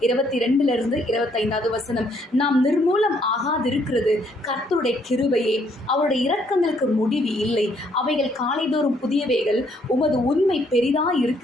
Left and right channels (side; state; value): both; normal; correlation 0.68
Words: 22 25 வசனம், நாம் நிர்மூலம் ஆகாதிருக்கிறது கர்த்தருடைய கிருபையே, அவருடைய இரக்கங்களுக்கு முடிவு இல்லை, அவைகள் காலைதோறும் புதியவைகள், உமது உண்மை பெரிதாய்